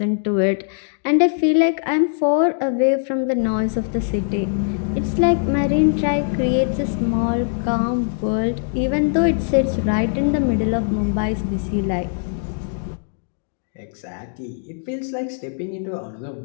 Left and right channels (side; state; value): right; silent; digital silence